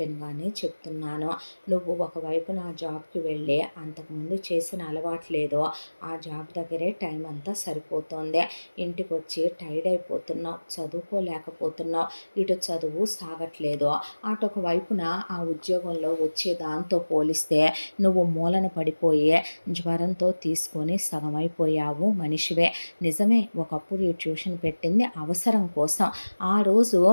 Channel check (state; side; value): inverted; both; correlation -1.00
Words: చెప్తున్నాను, నువ్వు ఒకవైపు నా జాబ్కి వెళ్ళి అంతకుముందు చేసిన అలవాట్లేదో ఆ జాబ్ దగ్గరే టైం అంతా సరిపోతుంది, ఇంటికి వచ్చి టైర్డ్ అయిపోతున్నావు, చదువుకోలేకపోతున్నావు, ఇటు చదువు సాగట్లేదు, అటొక వైపున ఆ ఉద్యోగంలో వచ్చే దాంతో పోలిస్తే నువ్వు మూలన పడిపోయే జ్వరంతో తీసుకొని సగమైపోయావు మనిషివే. నిజమే ఒకప్పుడు ఈ ట్యూషన్ పెట్టింది అవసరం కోసం, ఆ రోజు